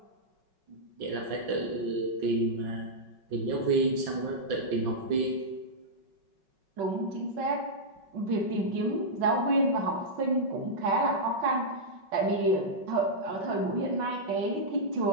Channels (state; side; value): late; left; 5.4 ms